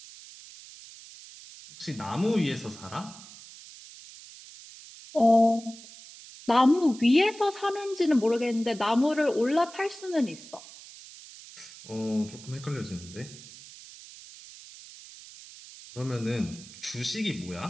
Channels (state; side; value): noise; right; hiss, 18 dB below the sound